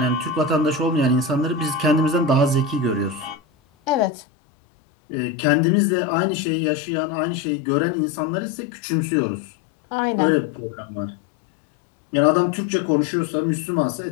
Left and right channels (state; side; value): drops out; right; at 4.1 s